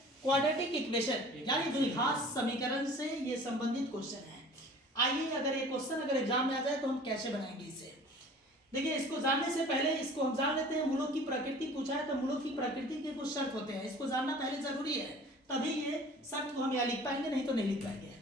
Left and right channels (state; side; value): normal; both; correlation 0.46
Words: क्वाड्रेटिक इक्वेशन यानी द्विघात समीकरण से ये संबंधित क्वेश्चन है। आइए, अगर ये क्वेश्चन अगर एग्जाम में आ जाए तो हम कैसे बनाएंगे इसे। देखिए, इसको जानने से पहले इसको हम जान लेते हैं। मूलों की प्रकृति पूछा है तो मूलों की प्रकृति के कुछ शर्त होते हैं, इसको जानना पहले जरूरी है, तभी ये शर्त को हम यहाँ लिख पाएंगे, नहीं तो नहीं लिख पाएंगे।